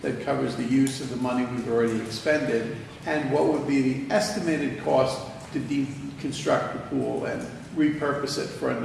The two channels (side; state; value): both; identical; correlation 1.00